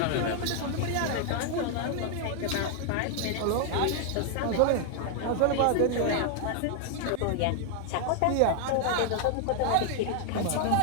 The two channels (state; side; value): different; both; correlation 0.00